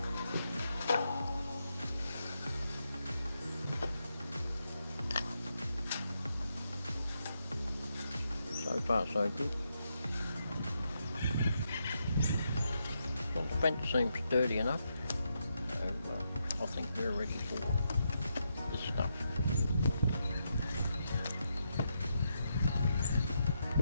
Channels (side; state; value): both; inverted; correlation -0.82